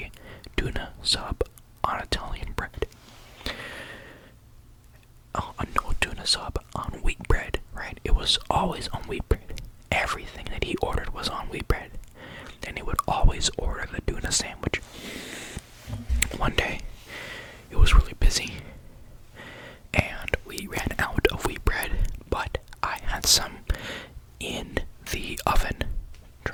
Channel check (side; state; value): both; identical; correlation 1.00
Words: tuna sub on Italian bread. No tuna sub on wheat bread, right? It was always on wheat bread. Everything that he ordered was on wheat bread. And he would always order the tuna sandwich. One day, it was really busy, and we ran out of wheat bread, but I had some in the oven